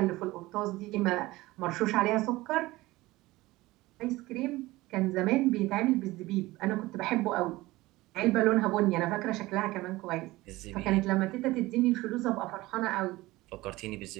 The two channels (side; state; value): left; quieter; 19.3 dB